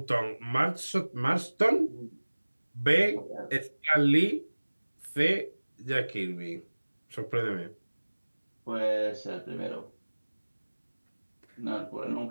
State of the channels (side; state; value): both; inverted; correlation -1.00